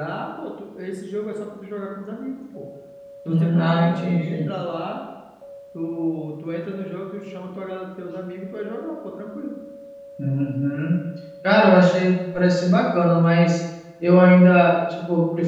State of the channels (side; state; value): both; identical; correlation 1.00